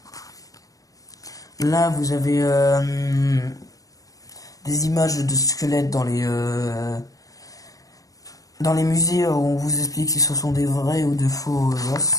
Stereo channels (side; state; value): right; late; 0.17 ms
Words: Là, vous avez des images de squelettes dans les musées où on vous explique si ce sont des vrais ou de faux os.